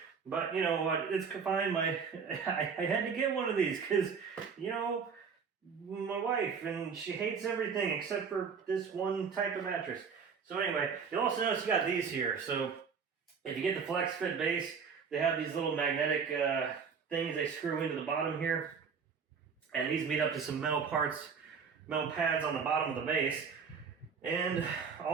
But you know what, it's fine. I had to get one of these because, my wife, and she hates everything except for this one type of mattress. So anyway, you'll also notice you got these here. So if you get the Flexfit Base, they have these little magnetic things they screw into the bottom here. And these meet up to some metal pads on the bottom of the base. And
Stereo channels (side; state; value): left; quieter; 6.1 dB